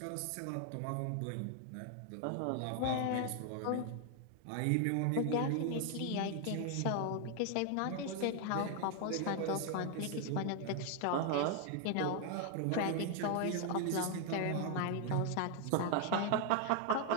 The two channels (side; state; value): both; different; correlation 0.00